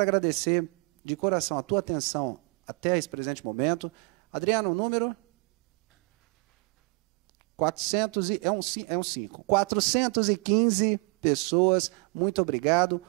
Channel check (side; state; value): left; quieter; 31.8 dB